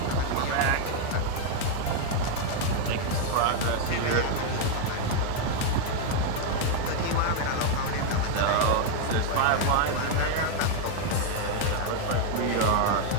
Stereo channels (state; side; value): different; both; correlation 0.00